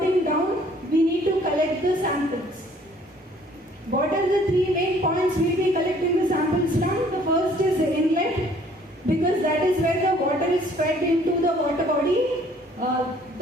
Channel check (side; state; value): both; normal; correlation 0.58